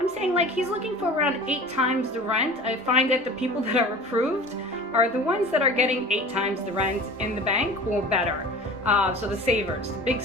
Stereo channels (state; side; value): normal; both; correlation 0.39